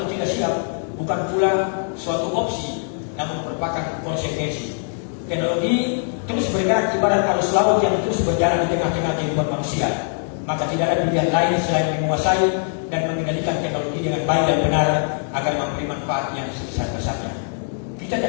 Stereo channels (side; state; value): right; silent; 64 dB below the other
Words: tidak siap, bukan pula suatu opsi, namun merupakan konsekuensi. Teknologi terus bergerak ibarat arus laut yang terus berjalan di tengah-tengah kehidupan manusia. Maka tidak ada pilihan lain selain menguasai dan mengendalikan teknologi dengan baik dan benar agar memberi manfaat yang sebesar-besarnya. Kita